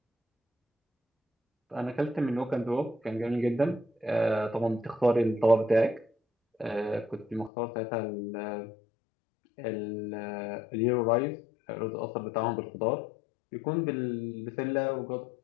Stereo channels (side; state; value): right; drops out; at 7.5 s